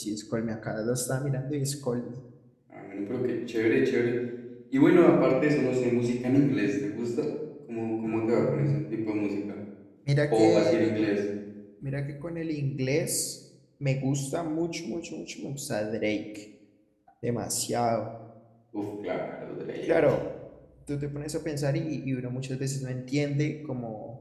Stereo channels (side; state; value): both; identical; correlation 1.00